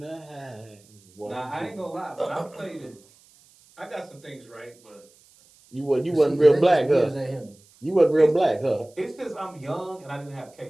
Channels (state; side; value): noise; right; hiss, 29 dB below the sound